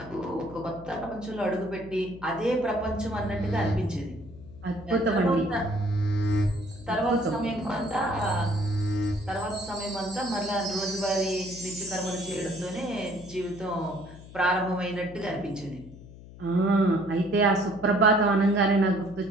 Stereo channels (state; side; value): noise; left; hum, 17 dB below the sound